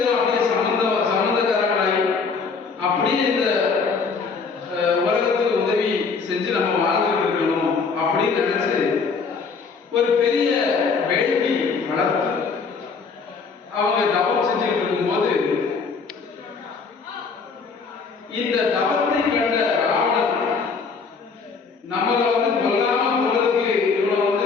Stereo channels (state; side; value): quieter; right; 5.1 dB